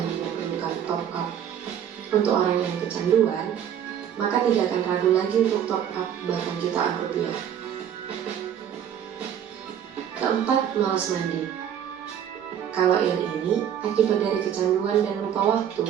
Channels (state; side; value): quieter; left; 9.4 dB